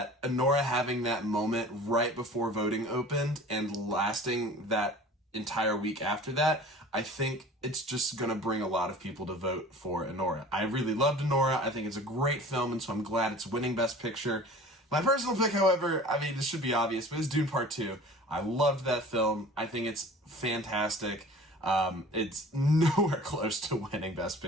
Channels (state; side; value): normal; both; correlation 0.43